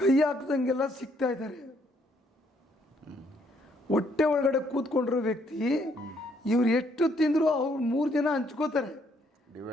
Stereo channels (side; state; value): both; normal; correlation 0.69